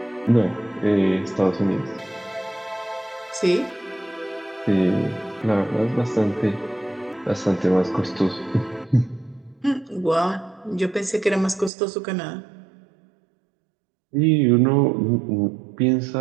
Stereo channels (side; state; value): left; drops out; at 11.7 s